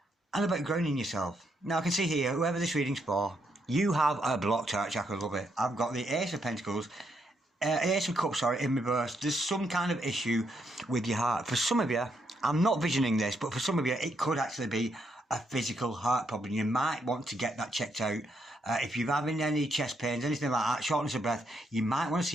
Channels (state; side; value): normal; both; correlation 0.77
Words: and about grounding yourself. Now, I can see here, whoever this reading's for, you have a blocked heart chakra, love it. I've got the Ace of Pentacles, Ace of Cups, sorry, in reverse. There's some kind of issue with your heart. For some of you, I'm not visioning this, but for some of you, it could actually be a physical heart problem. You might want to get that checked out. If you're having any chest pains, anything like that, shortness of breath, you might want to